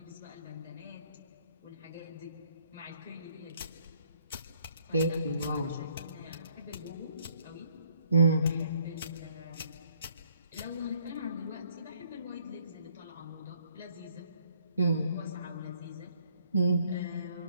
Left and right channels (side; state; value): both; inverted; correlation -0.66